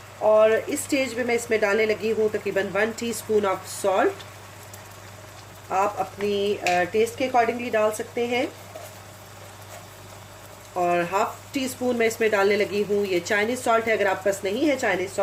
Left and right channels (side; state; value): both; identical; correlation 1.00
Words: और इस स्टेज पे मैं इसमें डालने लगी हूँ तकरीबन 1 टीस्पून ऑफ सॉल्ट। आप अपनी टेस्ट के अकॉर्डिंगली डाल सकते हैं। और हाफ टी स्पून मैं इसमें डालने लगी हूँ ये चाइनीज़ सॉल्ट है। अगर आप पास नहीं है चाइनीज़